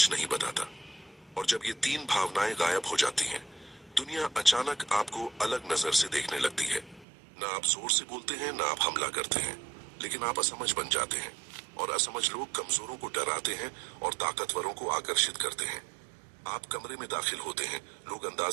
नहीं बताता। और जब ये तीन भावनाएं गायब हो जाती हैं, दुनिया अचानक आपको अलग नजर से देखने लगती है। ना आप जोर से बोलते हैं, ना आप हमला करते हैं, लेकिन आप असमझ बन जाते हैं। और असमझ लोग कमजोरों को डराते हैं और ताकतवरों को आकर्षित करते हैं। आप कमरे में दाखिल होते हैं, लोग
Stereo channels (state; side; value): drops out; left; at 7.1 s